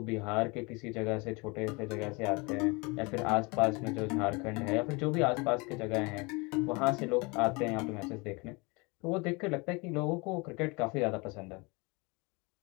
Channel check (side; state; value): right; quieter; 27.8 dB